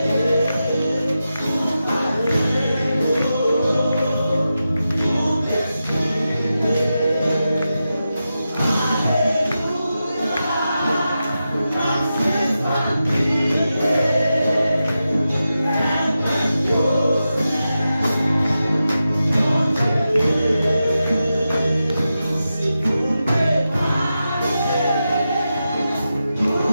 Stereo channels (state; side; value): inverted; both; correlation -0.90